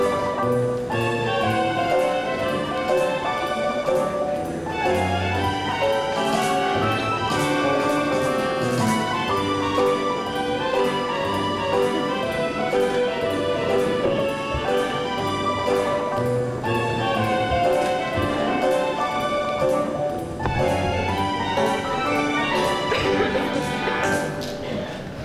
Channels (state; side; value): identical; both; correlation 1.00